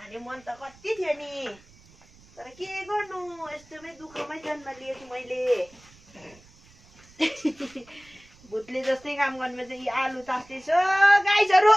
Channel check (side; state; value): right; noise; rumble, 26 dB below the sound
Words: मन त कति थियो नि तर के गर्नु यस्तोमै दुःखमै जन्म लिएछु मैले भूतले जस्तै काम गर्नु चाहिँ आलु तास्दैछु गाइसहरु